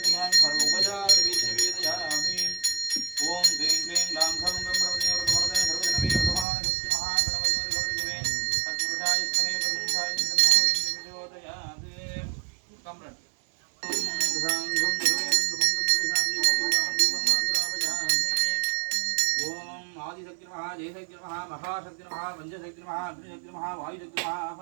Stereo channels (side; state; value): left; drops out; at 6.5 s